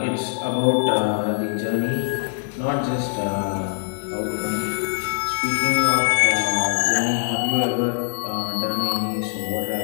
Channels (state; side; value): silent; right; digital silence